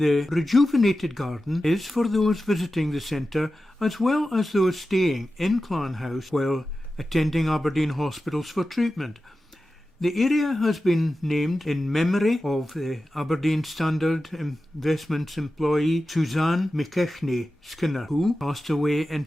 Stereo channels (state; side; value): normal; both; correlation 0.93